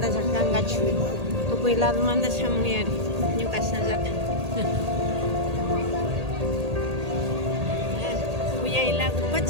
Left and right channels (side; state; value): left; late; 1.8 ms